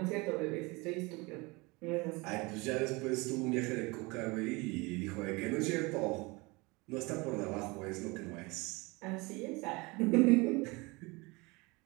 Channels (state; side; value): quieter; left; 25.4 dB